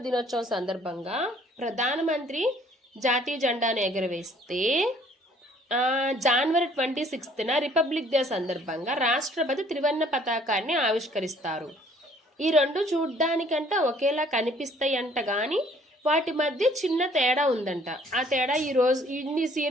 దినోత్సవం సందర్భంగా ప్రధానమంత్రి జాతీయ జెండాను ఎగరవేస్తే జనవరి 26న రిపబ్లిక్ డే సందర్భంగా రాష్ట్రపతి త్రివర్ణ పతాకాన్ని ఆవిష్కరిస్తారు. ఈ రెండు చూడ్డానికంట ఒకేలా కనిపిస్తాయి అంట, కానీ వాటి మధ్య చిన్న తేడా ఉందంట. ఆ తేడా ఈరోజు ఇన్ని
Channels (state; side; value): normal; both; correlation 0.59